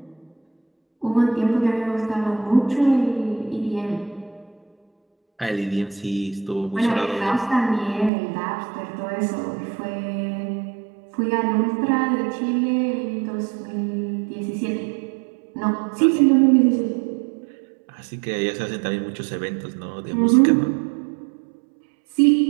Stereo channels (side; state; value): left; drops out; at 8.1 s